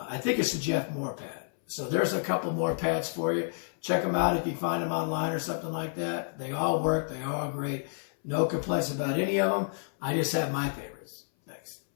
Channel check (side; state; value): right; silent; 58 dB below the other